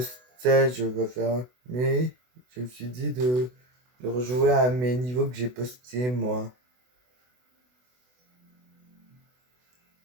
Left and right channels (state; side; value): late; left; 24 ms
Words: stage va faire, mais je me suis dit de rejouer à mes niveaux que j'ai postés moi.